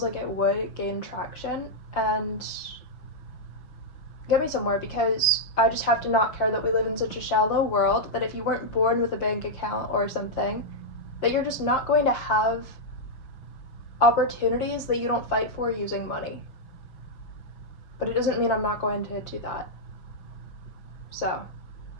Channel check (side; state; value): right; late; 5.8 ms